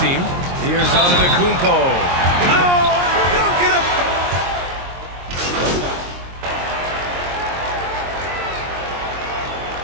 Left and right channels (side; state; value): left; late; 23 ms